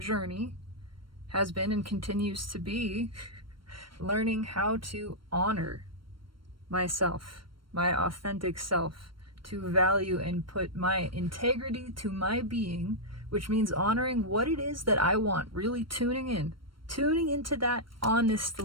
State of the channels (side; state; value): left; late; 0.73 ms